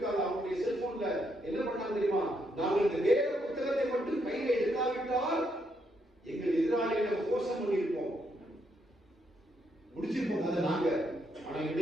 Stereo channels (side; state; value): both; normal; correlation 0.77